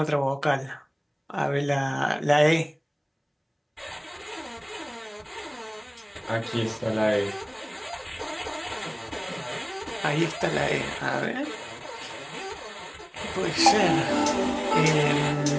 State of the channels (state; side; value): identical; both; correlation 1.00